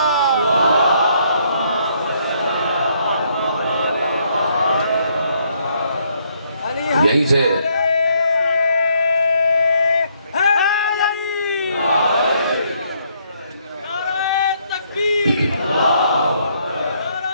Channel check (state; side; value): inverted; both; correlation -0.70